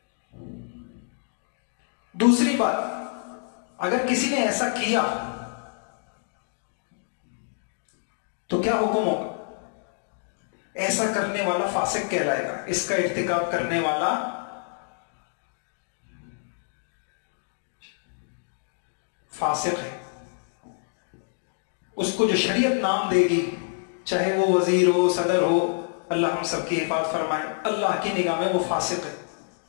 دوسری بات، اگر کسی نے ایسا کیا تو کیا حکم ہوگا؟ ایسا کرنے والا فاسق کہلائے گا، اس کا ارتکاب کرنے والا فاسق ہے. اس کو جو شریعت نام دے گی، چاہے وہ وزیر ہو، صدر ہو، اللہ ہم سب کی حفاظت فرمائے، اللہ کی نگاہ میں وہ فاسق ہے.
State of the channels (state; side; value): silent; right; digital silence